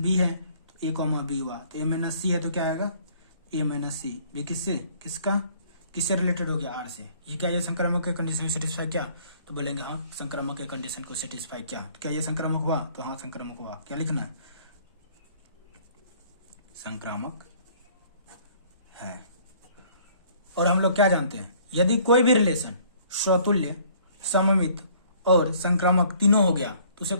है तो ए कॉमा बी हुआ, तो ए माइनस सी है तो क्या आएगा, ए माइनस सी। बी किससे, किससे रिलेटेड हो गया, आर से। ये क्या, ये संक्रामक के कंडीशन सेटिस्फाई क्या, तो बोलेंगे हाँ संक्रामक के कंडीशन को सेटिस्फाई किया। तो क्या ये संक्रामक हुआ, तो हाँ संक्रामक हुआ। क्या लिखना है, संक्रामक है। और हम लोग क्या जानते हैं, यदि कोई भी रिलेशन स्वतुल्य, सममित और संक्रामक तीनों हो गया तो उसे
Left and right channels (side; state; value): both; inverted; correlation -0.58